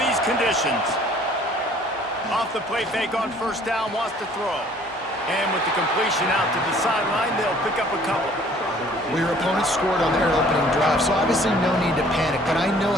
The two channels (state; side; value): normal; both; correlation 0.55